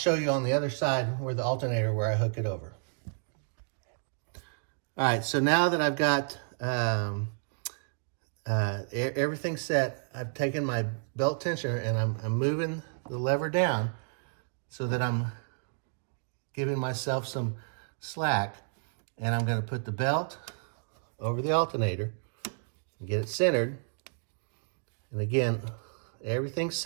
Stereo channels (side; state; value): left; silent; digital silence